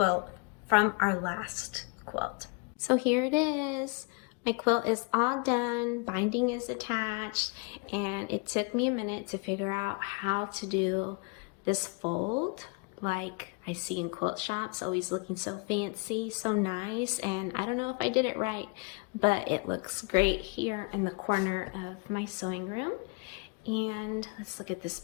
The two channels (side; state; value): right; quieter; 31.3 dB